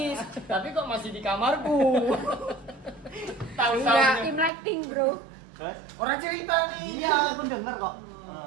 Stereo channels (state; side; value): drops out; left; at 4.5 s